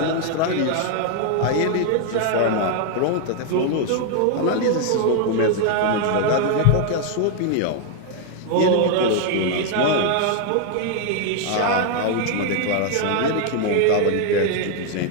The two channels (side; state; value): both; different; correlation 0.00